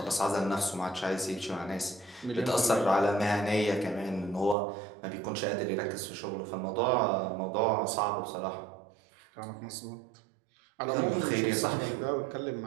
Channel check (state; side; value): drops out; left; at 4.5 s